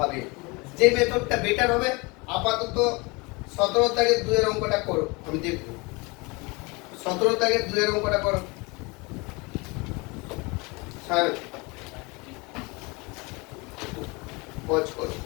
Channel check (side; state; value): right; quieter; 26.9 dB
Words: যে মেথডটা বেটার হবে, আপাতত 17 দাগের 2 এর অঙ্কটা করো, আমি দেখব। 17 দাগের 2 এর অঙ্কটা করো স্যার, পজ করো।